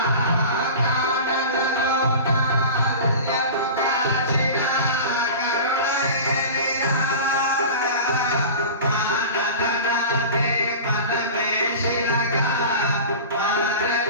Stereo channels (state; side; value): inverted; both; correlation -0.33